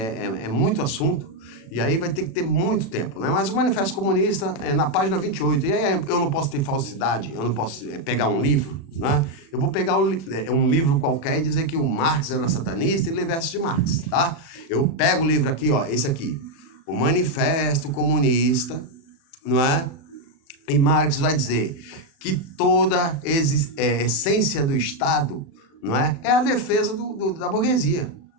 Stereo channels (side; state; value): right; late; 36 ms